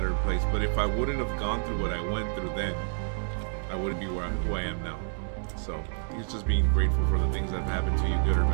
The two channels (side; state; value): left; silent; digital silence